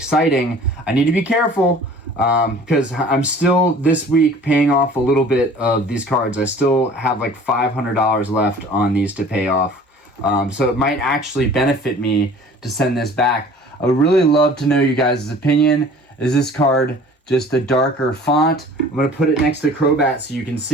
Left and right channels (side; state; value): both; normal; correlation 0.47